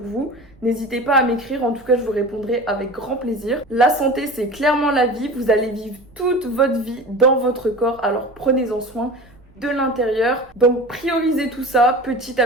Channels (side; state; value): right; noise; rumble, 27 dB below the sound